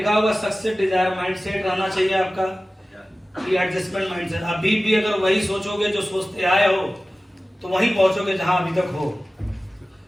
होगा सक्सेस डिजायर माइंडसेट रहना चाहिए आपका, एडजस्टमेंट माइंडसेट। अभी भी अगर वही सोचोगे जो सोचते आए हो तो वहीं पहुंचोगे जहां अभी तक हो।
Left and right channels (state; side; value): normal; both; correlation 0.96